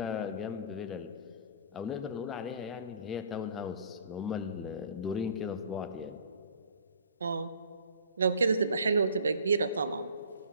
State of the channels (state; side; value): inverted; both; correlation -0.49